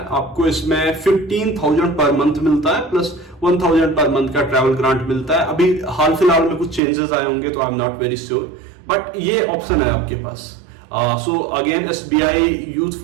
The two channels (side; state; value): left; drops out; at 6.8 s